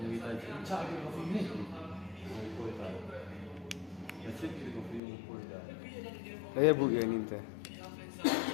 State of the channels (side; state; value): right; drops out; at 5.0 s